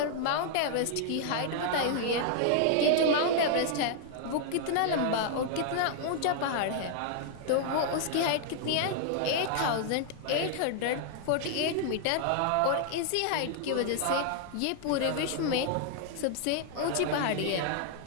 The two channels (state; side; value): different; both; correlation -0.01